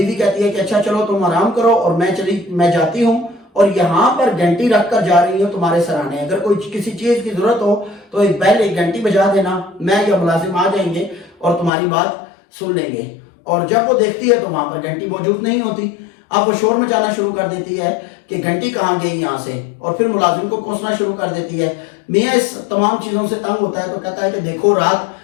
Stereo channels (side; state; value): right; drops out; at 11.7 s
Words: کہتی ہے کہ اچھا چلو تم آرام کرو اور میں جاتی ہوں، اور یہاں پر گھنٹی رکھ کر جا رہی ہوں تمہارے سرانے، اگر کوئی کسی چیز کی ضرورت ہو تو ایک پہلے گھنٹی بجا دینا، میں یا ملازم آ جائیں گے اور تمہاری بات سن لیں گے. اور جب وہ دیکھتی ہے تو وہاں پر گھنٹی موجود نہیں ہوتی. اب وہ شور مچانا شروع کر دیتی ہے کہ گھنٹی کہاں گئی یہاں سے، اور پھر ملازم کو کوسنا شروع کر دیتی ہے. میاں اس تمام چیزوں سے تنگ ہوتا ہے تو کہتا ہے کہ دیکھو رات